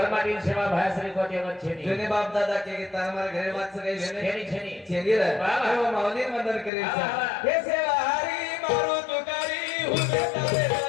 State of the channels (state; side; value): drops out; right; at 6.7 s